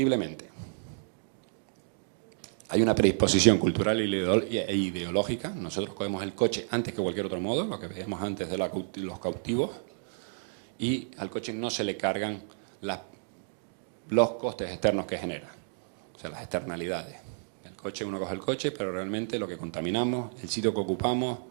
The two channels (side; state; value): left; silent; digital silence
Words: Hay una predisposición cultural e ideológica. Nosotros cogemos el coche antes que cualquier otro modo, lo que vemos antes de los cautivos, y al coche no se le cargan los costes externos que genera, o sea, las externalidades. El coche, uno coge el coche, pero realmente lo que contaminamos, el sitio que ocupamos,